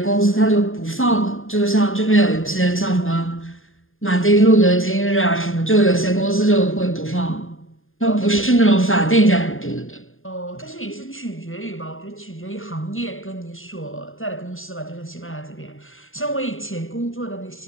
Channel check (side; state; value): right; late; 0.59 ms